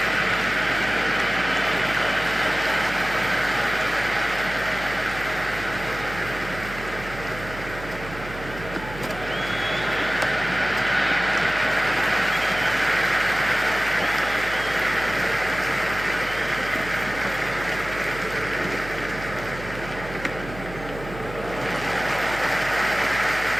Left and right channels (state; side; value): noise; right; hum, 12 dB below the sound